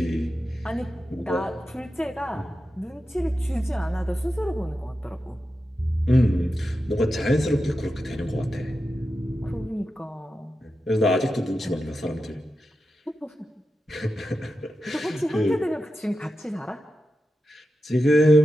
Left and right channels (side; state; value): both; normal; correlation 0.90